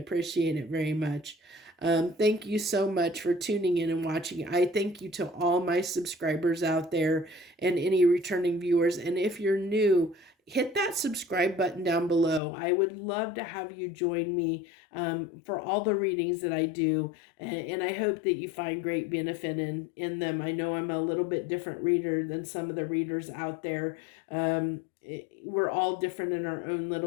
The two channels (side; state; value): right; drops out; at 12.4 s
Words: it very much. Thank you so much for tuning in and watching. I thank you to all my subscribers out there and any returning viewers. And if you're new, hit that subscribe button down below. I would love to have you join me for all the readings that I do. And I hope that you find great benefit in them. I know I'm a little bit different reader than some of the readers out there. We're all different in our own